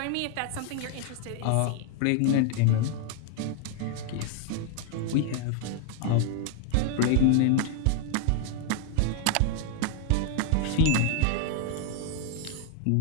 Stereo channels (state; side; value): different; both; correlation 0.00